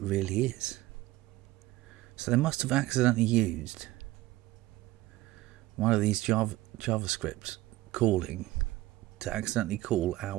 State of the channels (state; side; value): quieter; left; 17.8 dB